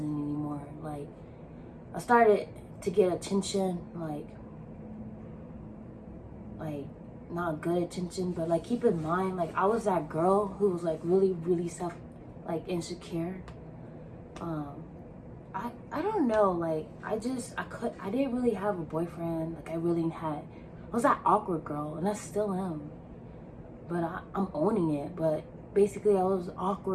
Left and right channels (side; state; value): both; identical; correlation 1.00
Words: anymore. Like I started to get attention, like not good attention, but like keep in mind, like I was that girl who was like really insecure. I don't know, like I didn't really have a boyfriend. Like I was that awkward girl, and I still am, but I'm owning it. But basically I was